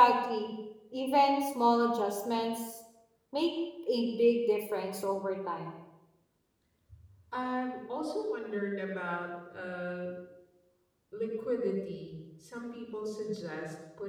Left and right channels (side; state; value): both; identical; correlation 1.00